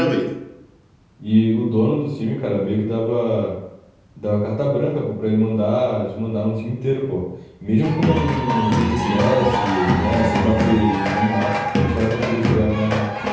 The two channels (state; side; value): identical; both; correlation 1.00